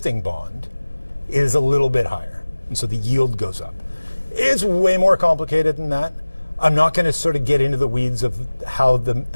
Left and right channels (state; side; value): inverted; both; correlation -1.00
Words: bond is a little bit higher. And so the yield goes up. It's way more complicated than that. I'm not going to sort of get into the weeds of how